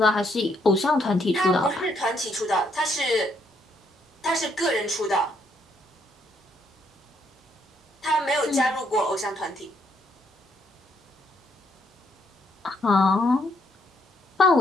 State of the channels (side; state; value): both; normal; correlation 0.72